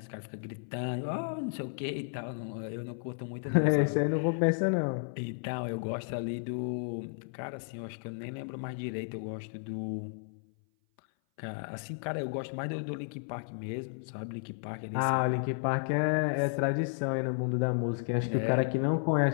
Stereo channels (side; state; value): right; silent; 56 dB below the other